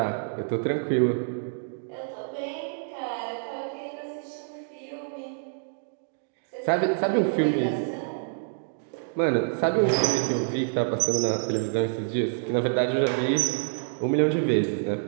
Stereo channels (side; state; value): left; silent; digital silence